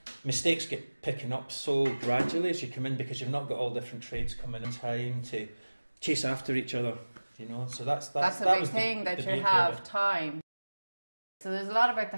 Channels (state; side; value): inverted; both; correlation -1.00